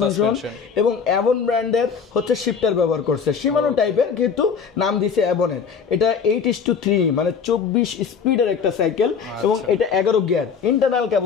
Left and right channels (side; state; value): right; quieter; 6.3 dB